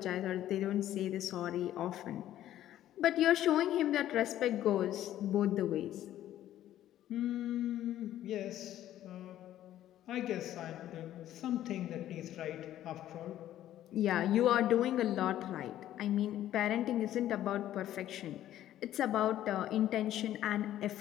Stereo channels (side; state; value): right; quieter; 12.6 dB